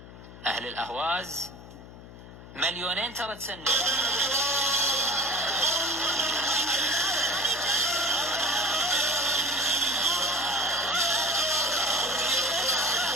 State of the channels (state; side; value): noise; left; hum, 16 dB below the sound